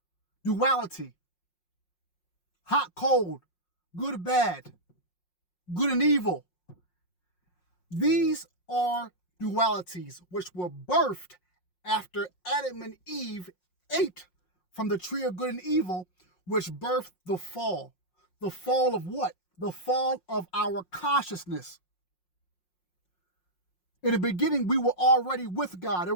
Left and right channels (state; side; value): late; right; 5.5 ms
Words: Duality, hot, cold, good, bad, good and evil. These are dualities which were birthed after Adam and Eve ate from the tree of good and evil, which birthed the fall. The fall of what? The fall of our consciousness. In the beginning, we were already with God. There